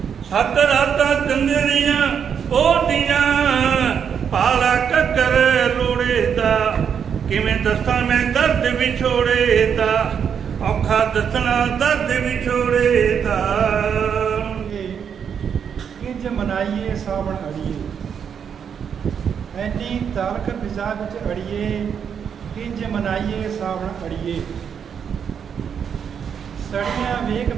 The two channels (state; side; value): quieter; left; 7.5 dB